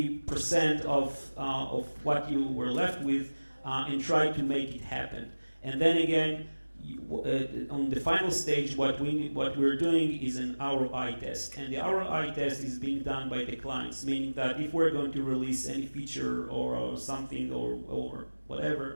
of what you were left with and try to make it happen. And then again, on the final stage, what we're doing is an ROI test, and the ROI test is being done by the clients, meaning that if we're going to release any feature or something or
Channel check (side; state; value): both; inverted; correlation -1.00